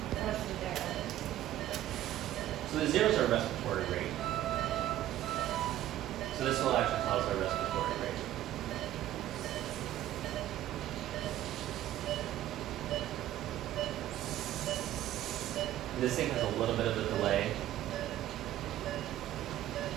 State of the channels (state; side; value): quieter; left; 13.3 dB